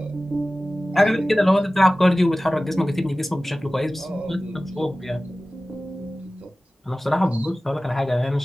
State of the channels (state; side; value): normal; both; correlation 0.97